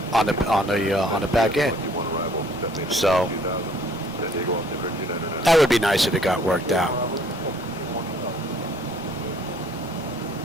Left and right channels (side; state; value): both; normal; correlation 0.59